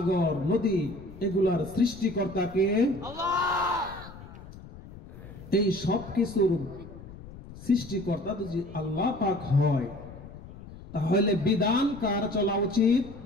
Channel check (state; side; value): noise; left; rumble, 16 dB below the sound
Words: নদী এগুলার সৃষ্টিকর্তা কে? এই সব কিছুর সৃষ্টিকর্তা যদি আল্লাহ পাক হয়, তাহলে বিধান কার চলা উচিত?